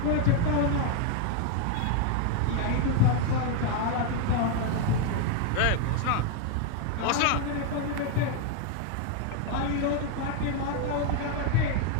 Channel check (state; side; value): different; both; correlation 0.01